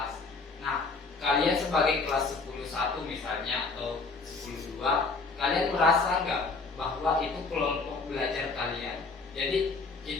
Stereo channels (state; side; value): quieter; right; 4.0 dB